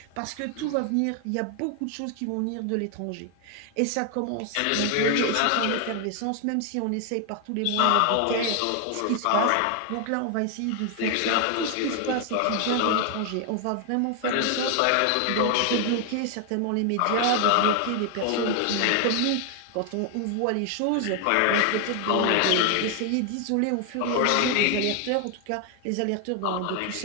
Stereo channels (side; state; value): both; different; correlation 0.00